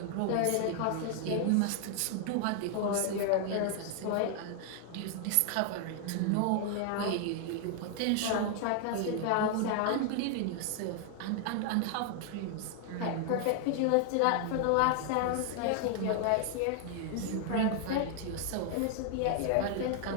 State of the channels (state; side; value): different; both; correlation 0.00